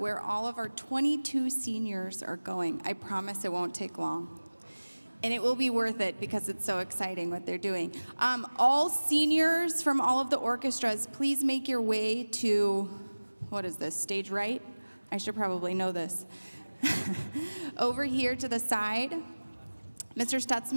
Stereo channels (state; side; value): inverted; both; correlation -1.00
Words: all of our 22 seniors are going. I promise it won't take long. And it will be worth it because it's so exciting what they're doing. All seniors from all of the orchestras, please make your way to, what is this, stage right? I should probably know this. Over here to the side, Mr.